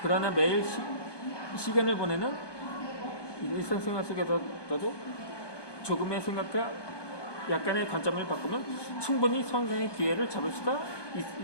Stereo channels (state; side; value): late; right; 1.2 ms